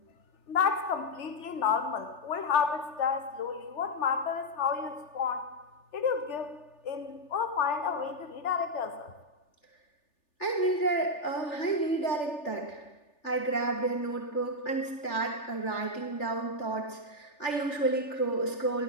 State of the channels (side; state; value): right; late; 3.4 ms